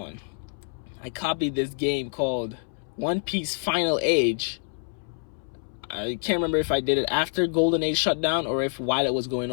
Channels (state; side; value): silent; right; 60 dB below the other